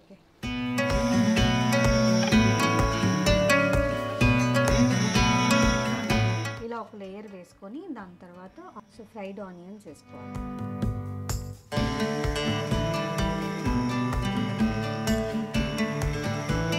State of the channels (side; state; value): both; identical; correlation 1.00